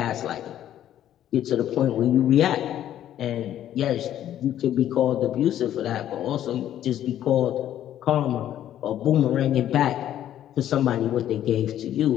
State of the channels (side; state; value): right; quieter; 11.5 dB